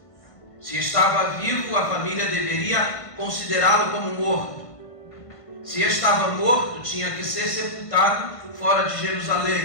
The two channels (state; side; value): late; right; 1.5 ms